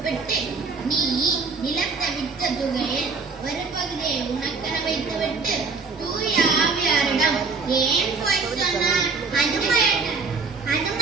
நீ நிலத்தை விற்ற தொகையில் ஒரு பகுதியை உனக்கென வைத்துவிட்டு தூய ஆவியாரிடம் ஏன் போய் சொன்னாய்? அது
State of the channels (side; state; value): left; quieter; 4.5 dB